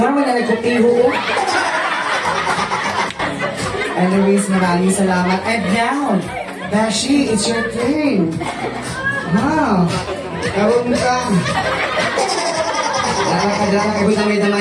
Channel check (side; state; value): both; identical; correlation 1.00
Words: mo na nagkutiho. Anyways, maraming salamat. And now, Dashi, it's your turn. Wow. Karoon ka. Dala ka,